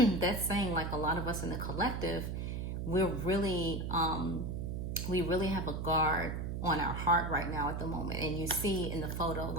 saying, like, a lot of us in the collective, we're really... we really have a guard on our heart right now at the moment. And you see in the photo,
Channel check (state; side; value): noise; right; hum, 3 dB below the sound